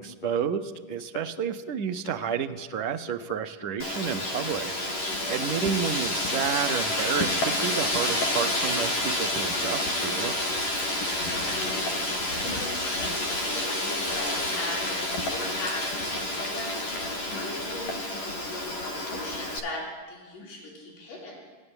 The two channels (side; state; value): right; late; 11 ms